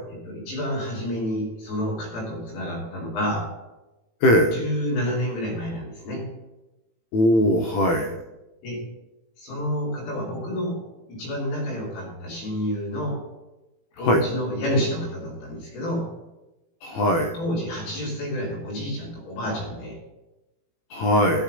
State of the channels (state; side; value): late; right; 18 ms